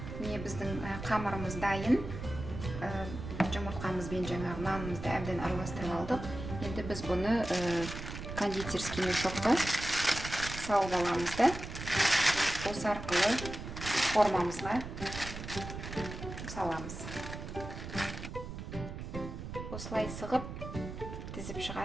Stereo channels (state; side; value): noise; right; rumble, 8 dB below the sound